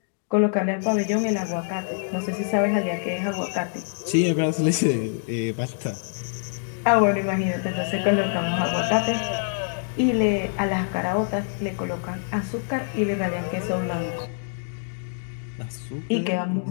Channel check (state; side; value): silent; right; digital silence